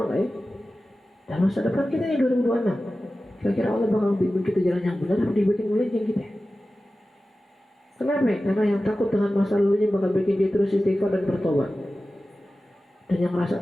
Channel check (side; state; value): both; normal; correlation 0.95